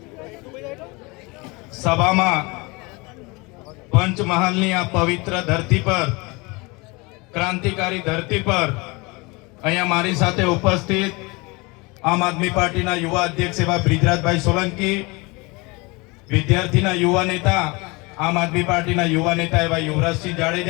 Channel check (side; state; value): right; quieter; 26.0 dB